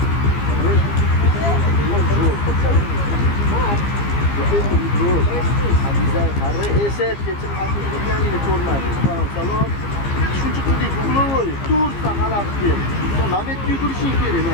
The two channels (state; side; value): late; right; 15 ms